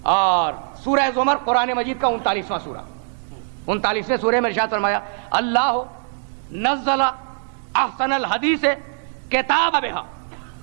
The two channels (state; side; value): silent; left; digital silence